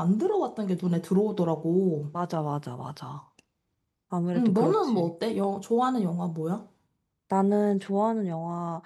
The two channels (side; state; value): both; identical; correlation 1.00